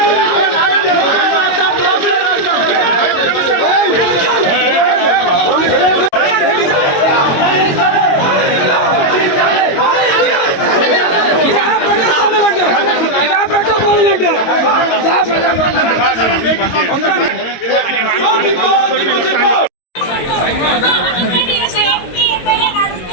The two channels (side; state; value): right; late; 22 ms